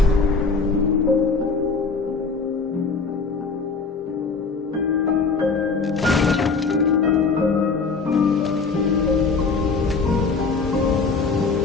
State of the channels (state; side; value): quieter; right; 4.5 dB